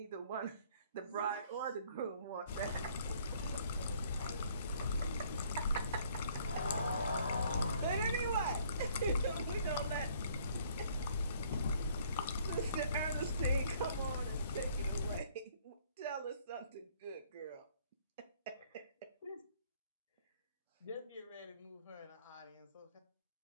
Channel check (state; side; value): inverted; both; correlation -0.61